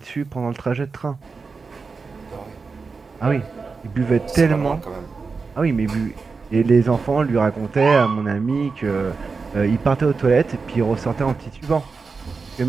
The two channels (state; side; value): quieter; left; 4.6 dB